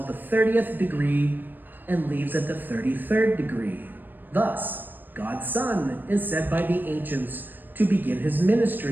the 30th degree and leaves at the 33rd degree. Thus, God's Son is said by the ancients to begin his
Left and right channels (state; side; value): late; left; 0.091 ms